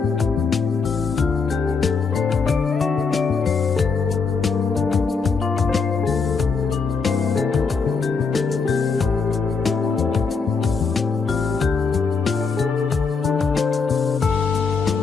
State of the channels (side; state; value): right; quieter; 5.1 dB